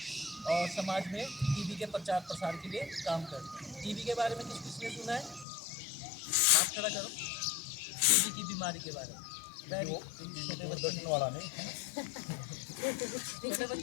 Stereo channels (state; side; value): drops out; right; at 5.5 s